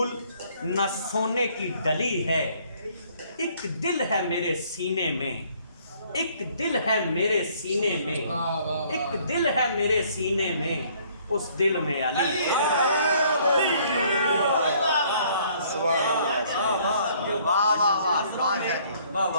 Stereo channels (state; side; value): inverted; both; correlation -0.61